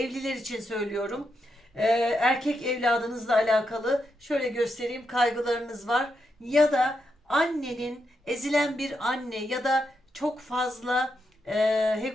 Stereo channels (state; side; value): normal; both; correlation 0.83